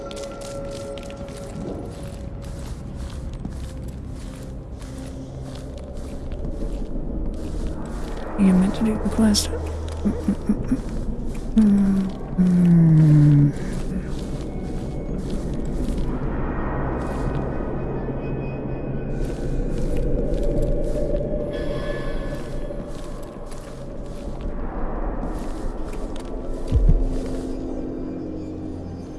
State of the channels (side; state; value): both; identical; correlation 1.00